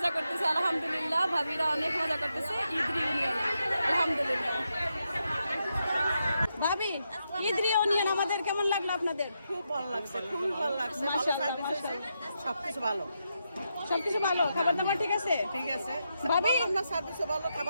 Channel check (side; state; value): both; inverted; correlation -0.84